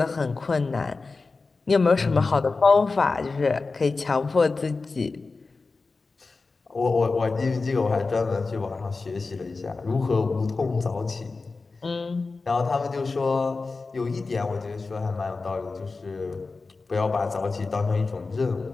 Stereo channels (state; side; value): quieter; right; 4.0 dB